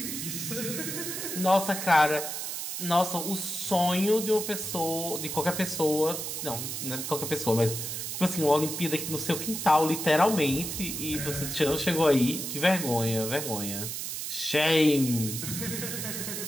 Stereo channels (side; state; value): right; noise; hiss, 5 dB below the sound